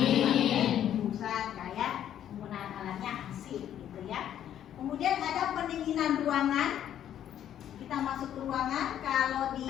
Hembusan kayak penggunaan alatnya AC gitu ya. Kemudian ada pendinginan ruangan. Kita masuk ke ruangan, kalau di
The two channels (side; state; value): right; quieter; 10.5 dB